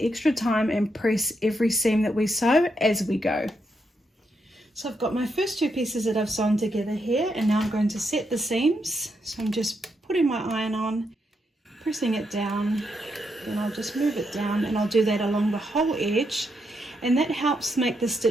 time and press every seam that we sew as we go. So I've got my first 2 pieces that I've sewn together here, and now I'm going to set the seams. So I'm just putting my iron on, pressing it down, and I'll just move it down, and I'll do that along the whole edge, and that helps make the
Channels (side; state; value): both; normal; correlation 0.81